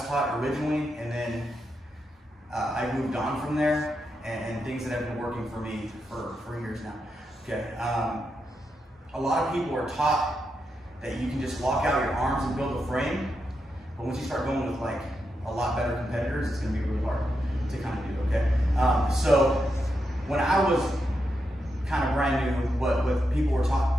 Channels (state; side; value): normal; both; correlation 0.85